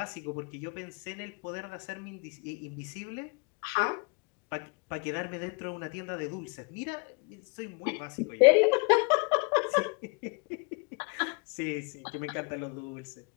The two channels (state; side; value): quieter; right; 30.3 dB